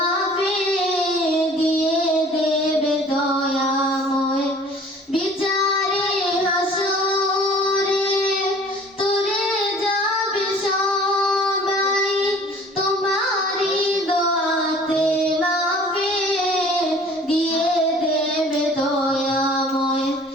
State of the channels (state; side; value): normal; both; correlation 0.50